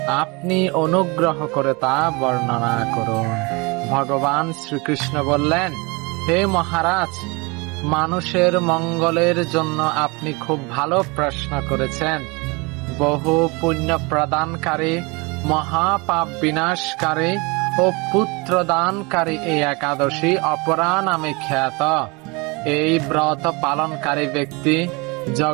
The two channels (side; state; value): left; quieter; 27.4 dB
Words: আপনি অনুগ্রহ করে তা বর্ণনা করুন। ভগবান শ্রীকৃষ্ণ বললেন, হে মহারাজ, মানুষের মঙ্গলের জন্য আপনি খুব ভালো প্রশ্ন করেছেন। বহু পুণ্য প্রদানকারী, মহাপাপ বিনাশকারী ও পুত্র দানকারী এই একাদশী অপরা নামে খ্যাত। এই ব্রত পালনকারী ব্যক্তি